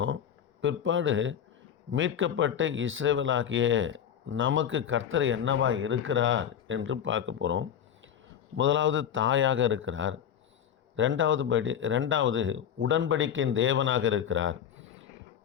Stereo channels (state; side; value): quieter; right; 9.0 dB